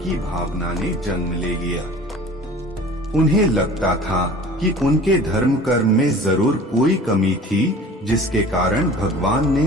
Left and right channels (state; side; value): normal; both; correlation 0.43